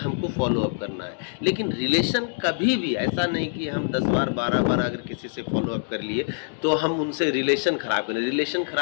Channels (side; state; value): right; silent; digital silence